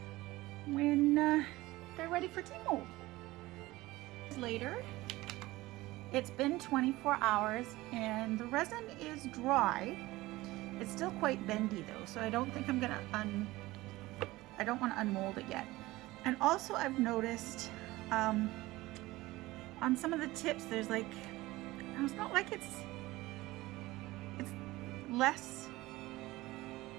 when they're ready for tea mold. Later, it's been 24 hours and the resin is dry. It's still quite bendy though, so I don't think I'm gonna I don't want to unmold it yet. And also I've noticed on some of the tips there's like, it's not like it's less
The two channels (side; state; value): left; quieter; 18.9 dB